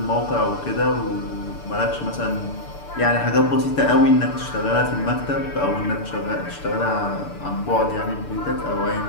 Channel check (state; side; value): late; right; 6.8 ms